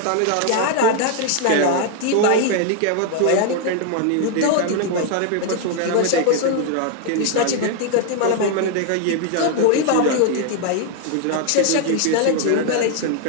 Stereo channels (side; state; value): both; different; correlation 0.00